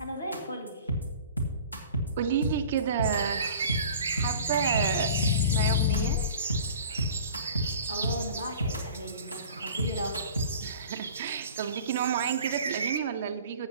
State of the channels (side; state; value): both; inverted; correlation -0.44